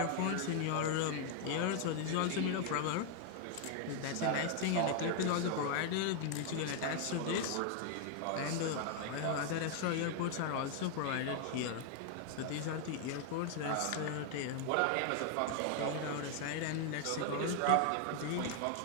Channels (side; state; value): both; different; correlation 0.00